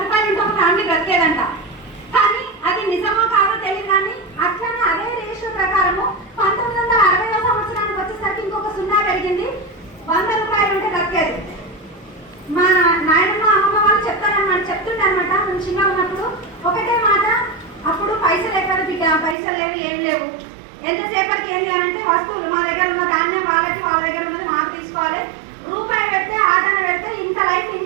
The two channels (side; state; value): left; drops out; at 19.4 s